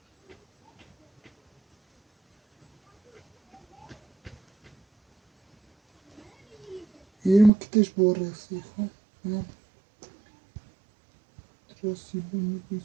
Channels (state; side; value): drops out; left; at 7.5 s